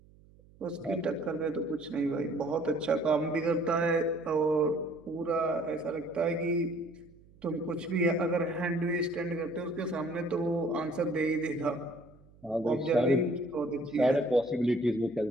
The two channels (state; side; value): noise; right; hum, 26 dB below the sound